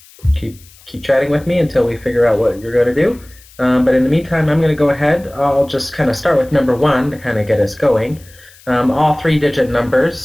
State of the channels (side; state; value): left; noise; hiss, 25 dB below the sound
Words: chatting with me until we figure out what you're going to do. But in the meantime, I'm going to go ahead. I'll just kind of start with number 1 to kind of get us going. All 3-digit